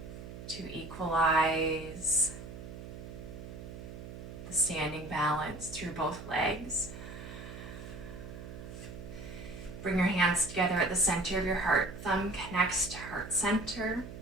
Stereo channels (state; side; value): noise; right; hum, 11 dB below the sound